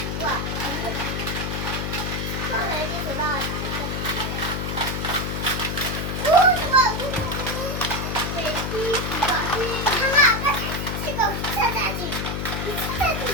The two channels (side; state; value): left; noise; hum, 2 dB below the sound